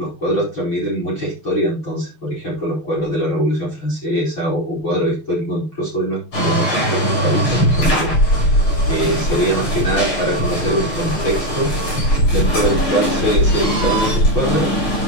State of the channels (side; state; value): right; late; 6.4 ms